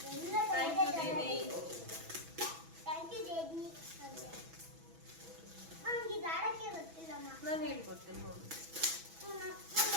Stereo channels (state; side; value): late; left; 6.1 ms